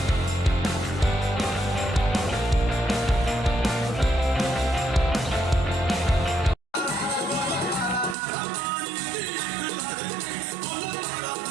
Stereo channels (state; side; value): drops out; left; at 8.2 s